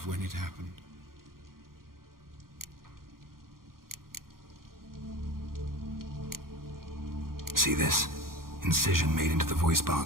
when it happened. See this? Incision made into the voice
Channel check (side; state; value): left; late; 0.92 ms